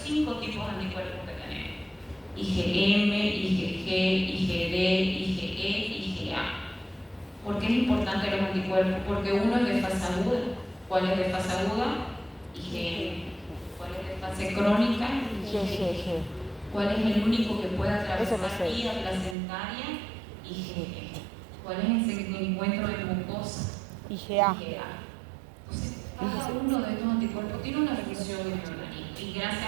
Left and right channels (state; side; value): drops out; left; at 19.4 s